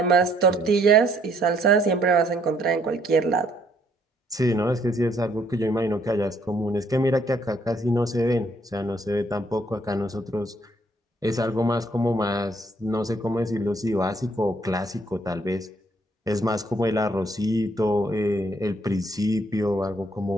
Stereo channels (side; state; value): both; normal; correlation 0.67